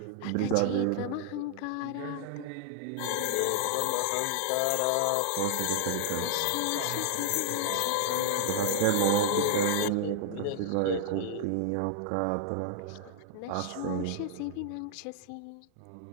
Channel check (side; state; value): both; different; correlation 0.00